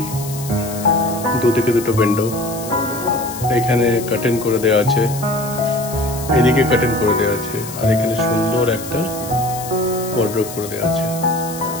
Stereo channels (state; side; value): noise; left; hiss, 12 dB below the sound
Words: দুদিকে দুটো উইন্ডো, এখানে কার্টেন করে দেওয়া আছে, এদিকে কার্টেন করে দেওয়া আছে, আর এখানে সুন্দর একটা ওয়ার্ডরোব করে দেওয়া আছে।